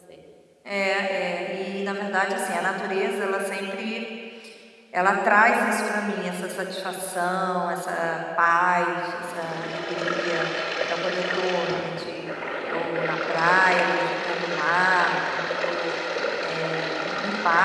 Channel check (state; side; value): identical; both; correlation 1.00